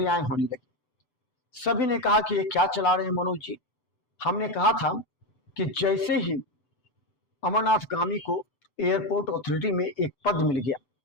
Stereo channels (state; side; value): late; right; 7.9 ms